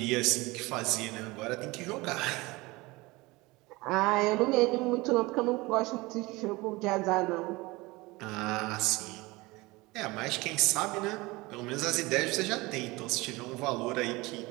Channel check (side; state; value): left; quieter; 22.3 dB